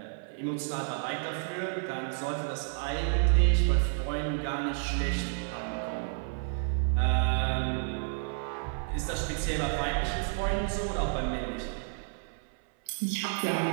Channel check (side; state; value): left; silent; 57 dB below the other